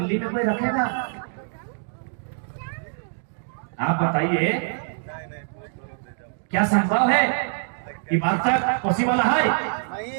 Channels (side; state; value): left; silent; digital silence